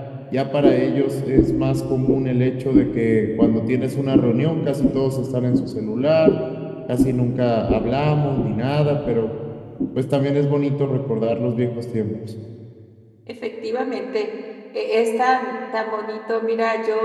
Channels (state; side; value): identical; both; correlation 1.00